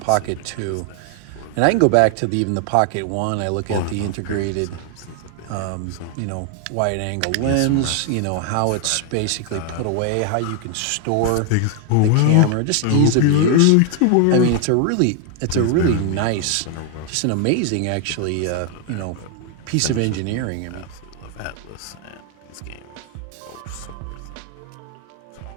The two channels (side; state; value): both; different; correlation 0.00